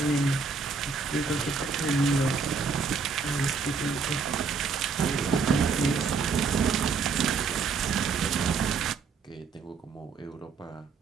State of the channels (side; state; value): left; quieter; 5.0 dB